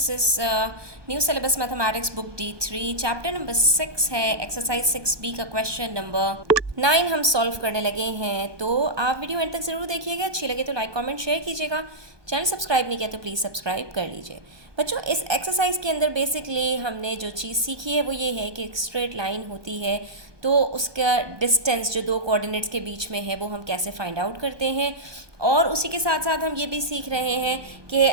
is new syllabus mathematics book D3 chapter number 6 है exercise 6B का question number 9 हम solve करने लगे हैं। तो आप वीडियो एंड तक ज़रूर देखिएगा, अच्छी लगे तो लाइक कमेंट शेयर कीजिएगा, चैनल सब्सक्राइब नहीं किया तो प्लीज़ सब्सक्राइब कर लीजिए। बच्चों इस एक्सरसाइज के अंदर बेसिकली हमने जो चीज़ सीखी है वो ये है कि एक स्ट्रेट लाइन होती है तो उसका डिस्टेंस जो दो कोऑर्डिनेट्स के बीच में है वो हम कैसे फाइंड आउट करते हैं, और उसी के साथ साथ हम ये भी सीख रहे हैं कि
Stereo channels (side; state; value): left; late; 1.2 ms